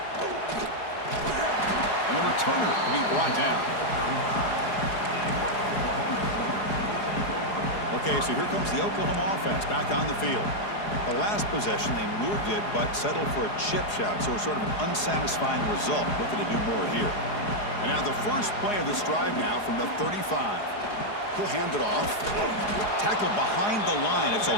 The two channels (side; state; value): right; late; 4.8 ms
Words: And the returner will be brought down. Okay, so here comes the Oklahoma offense back on the field. The last possession, they moved it, but settled for a chip shot, so it's sort of an unsatisfying result. Looking to do more here. And now the first play of this drive now from the 35. He'll hand it off. Tackled behind the line. It's a